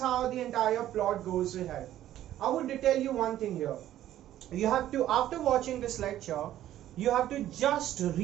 the entire plot goes ahead. I would tell you one thing here. You have to, after watching this lecture, you have to just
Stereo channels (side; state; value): left; quieter; 12.7 dB